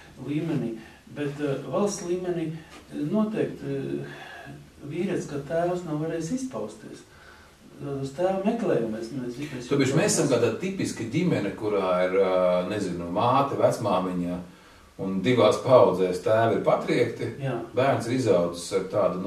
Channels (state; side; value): identical; both; correlation 1.00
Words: līmenī, bet valsts līmenī noteikti vīrietis, kā tēvs, nav varējis izpausties. Uz tēva meklējumies. Tāpēc mēs esam kādā tipiska ģimene, kurā ir, nezinu, māte, vecmāmiņa, un divās paudzēs tēvi ir patriekti, bērns ir izaudzis ar tādu,